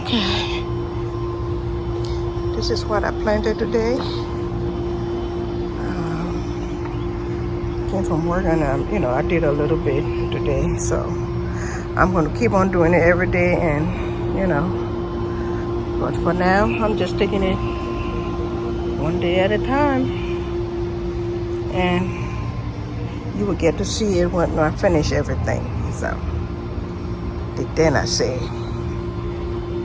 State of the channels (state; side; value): identical; both; correlation 1.00